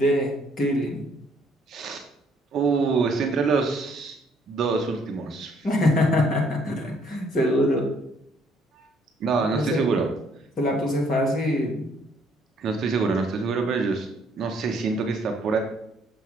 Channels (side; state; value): both; normal; correlation 0.65